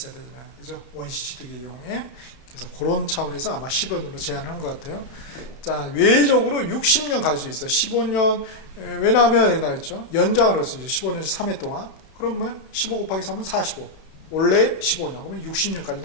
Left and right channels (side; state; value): right; late; 32 ms